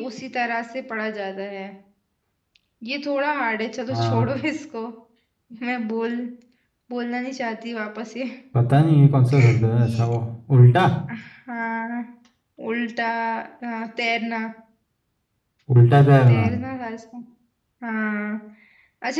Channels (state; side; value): identical; both; correlation 1.00